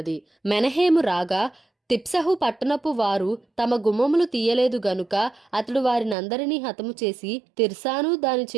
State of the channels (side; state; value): left; drops out; at 6.2 s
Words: మెనహేము రాగా తిప్సహు పట్టణపు వారు తమ గుమ్మములు తీయలేదు గనుక అతడు వారినందరినీ హతము చేసి తిర్సాను దాని